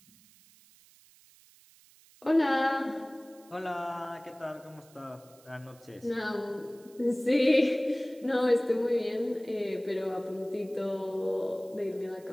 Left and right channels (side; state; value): right; noise; hiss, 27 dB below the sound